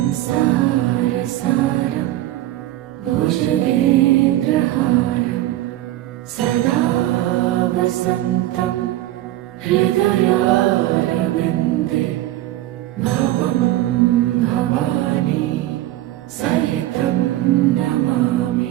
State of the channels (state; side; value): quieter; left; 15.1 dB